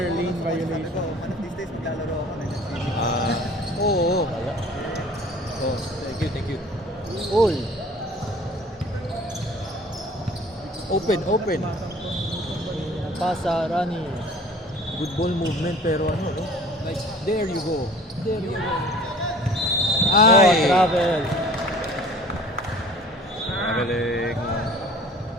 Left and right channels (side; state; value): both; normal; correlation 0.48